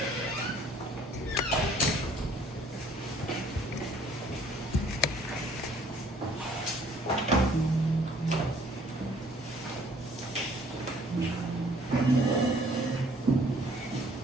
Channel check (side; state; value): both; normal; correlation 0.59